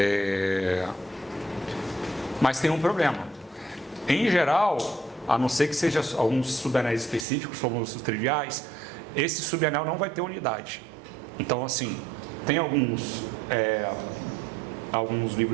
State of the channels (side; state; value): left; drops out; at 7.2 s